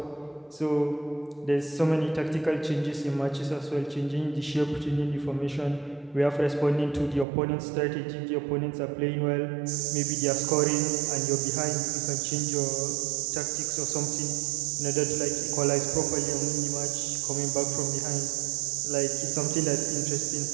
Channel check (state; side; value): drops out; left; at 7.2 s